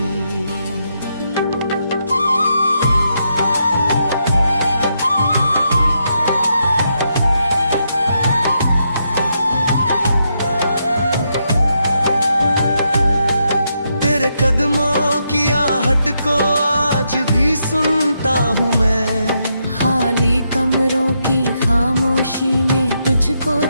तेरे कदमों की आहट को आज भी सुनता हूँ मैं। खाली कमरों की खामोशी में तुझको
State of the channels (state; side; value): inverted; both; correlation -0.80